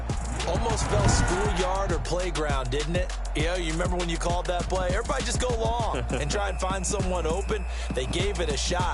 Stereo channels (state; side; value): identical; both; correlation 1.00